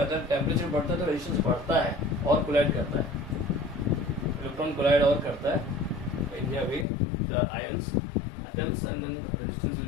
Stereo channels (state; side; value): drops out; right; at 6.9 s